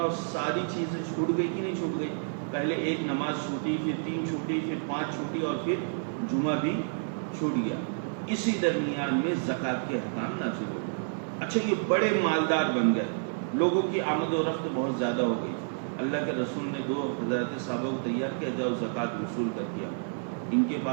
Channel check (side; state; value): left; silent; digital silence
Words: ساری چیزیں چھوٹ گئی کہ نہیں چھوٹ گئی؟ پہلے ایک نماز چھوٹی، پھر 3 چھوٹی، پھر 5 چھوٹی، اور پھر جمعہ بھی چھوٹ گیا۔ اسی درمیان میں زکوٰۃ کے احکام نازل ہو گئے۔ اچھا، یہ بڑے مالدار بن گئے، لوگوں کی آمد و رفت بہت زیادہ ہو گئی۔ اللہ کے رسول نے 2 حضرات صحابہ کو تیار کیا، جاؤ زکوٰۃ وصول کر دیا۔ ان کے